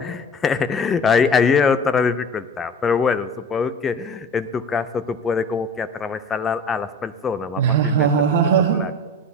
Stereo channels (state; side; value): normal; both; correlation 0.37